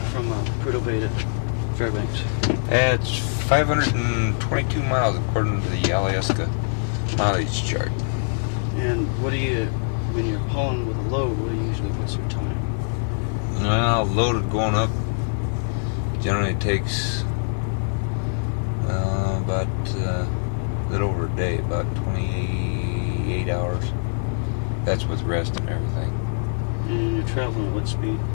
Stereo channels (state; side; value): silent; right; digital silence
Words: from Prudhoe Bay to Fairbanks? It's 522 miles according to the Alyeska mileage chart. And what do you, when you're pulling with a load, what do you usually put some time? Well, loaded going up generally takes about a little over a day, about 28 hours. That's with rest and everything. And you're traveling at what speed?